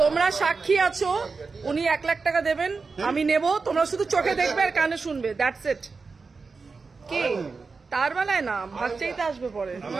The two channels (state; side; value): quieter; left; 4.5 dB